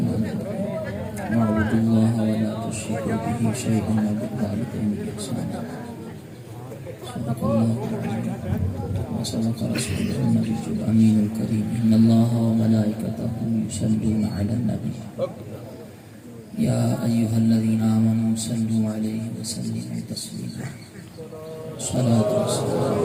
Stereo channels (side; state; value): both; identical; correlation 1.00